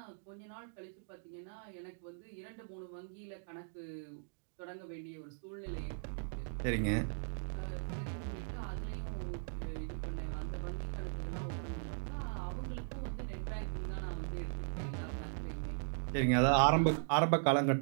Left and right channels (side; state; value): left; silent; digital silence